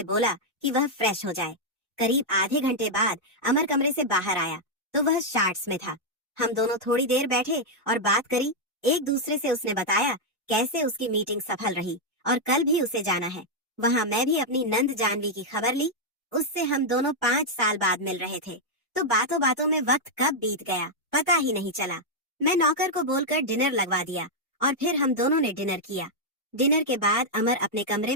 बोला कि वह फ्रेश हो जाए। करीब आधे घंटे बाद अमर कमरे से बाहर आया तो वह शार्ट्स में था। हम दोनों थोड़ी देर बैठे और बात करी। एक दूसरे से उसने बताया कैसे उसकी मीटिंग सफल रही और कल भी उसे जाना है। वहां मैं भी अपनी नंद जानवी की खबर ली। उससे हम दोनों 5 साल बाद मिल रहे थे, तो बातों बातों में वक्त कब बीत गया पता ही नहीं चला। मैं नौकर को बोलकर डिनर लगवा दिया और फिर हम दोनों ने डिनर किया। डिनर के बाद अमर अपने कमरे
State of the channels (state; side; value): normal; both; correlation -0.03